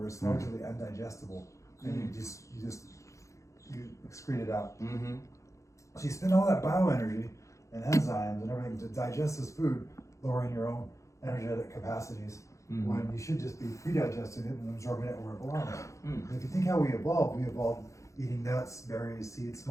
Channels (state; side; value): late; right; 0.15 ms